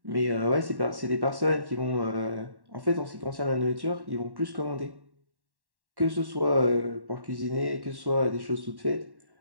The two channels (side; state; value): left; late; 1.1 ms